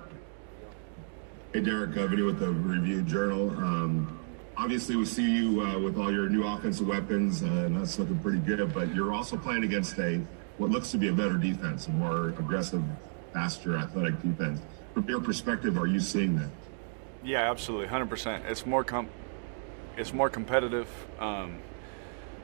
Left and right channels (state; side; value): silent; left; digital silence